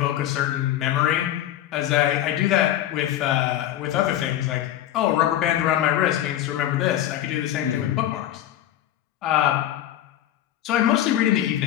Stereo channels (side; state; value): right; quieter; 12.4 dB